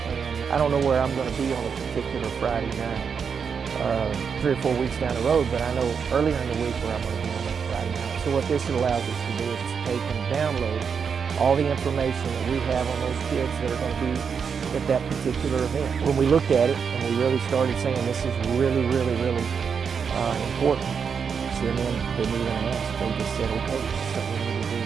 and I don't know where I'm going to be on a particular Friday night, 3 or 4 weeks down the road, but I know earlier in the week where I'm going to be on that Friday night. So what this allows us to do is to take and download all the information that we have on those kids that are going to be at that particular event. When we looked at it and we really started saying this is really, really, really important, CNN didn't even ask. They just said, okay, that's something we need to do.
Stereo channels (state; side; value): quieter; left; 6.4 dB